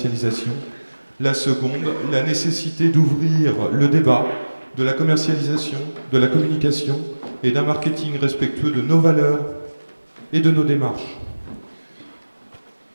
La seconde, la nécessité d'ouvrir le débat de la commercialisation, de la communication et d'un marketing respectueux de nos valeurs et de nos démarches.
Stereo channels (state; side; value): inverted; both; correlation -1.00